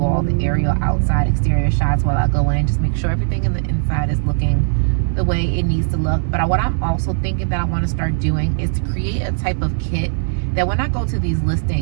all the aerial outside exterior shots while I go in. Just make sure everything in the inside is looking the way it needs to look. But what I'm also thinking that I want to start doing is to create a type of kit that when I go to these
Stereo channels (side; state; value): left; silent; digital silence